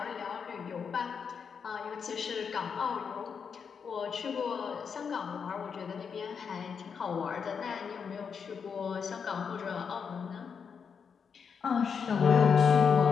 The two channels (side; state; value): right; quieter; 6.4 dB